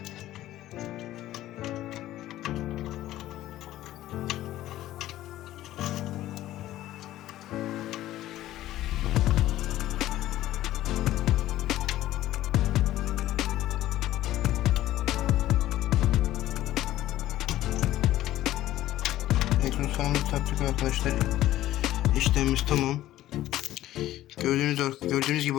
Ekran fanımızı taktık arkadaşlar. İşlemimiz tamam. Gördüğünüz gibi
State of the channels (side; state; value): right; quieter; 14.4 dB